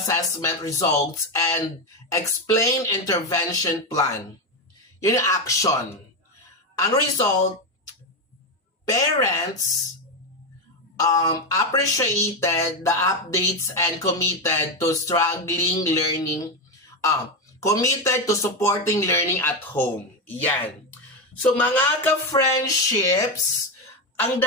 results and explained intervention plan. Yun yung action. Ang result, parents appreciated the updates and committed to committed to supporting learning at home. Yan. So mga ka-friendships, ang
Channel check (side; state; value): both; normal; correlation 0.11